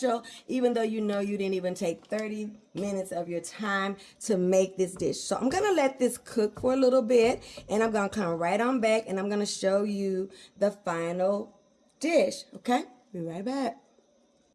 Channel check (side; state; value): both; identical; correlation 1.00